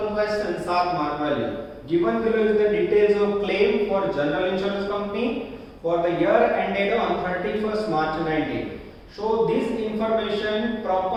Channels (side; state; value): both; identical; correlation 1.00